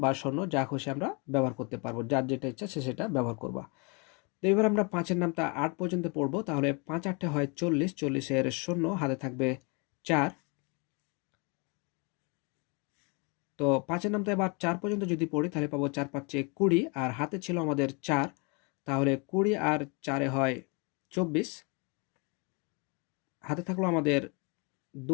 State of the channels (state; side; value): quieter; right; 32.2 dB